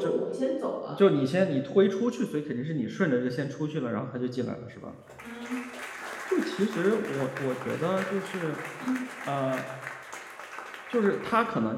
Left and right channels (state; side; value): identical; both; correlation 1.00